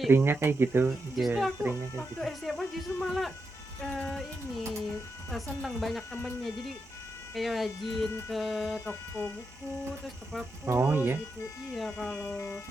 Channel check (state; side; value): normal; both; correlation 0.86